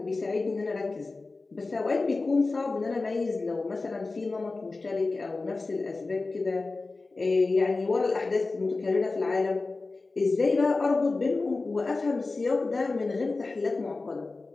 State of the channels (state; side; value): quieter; right; 3.6 dB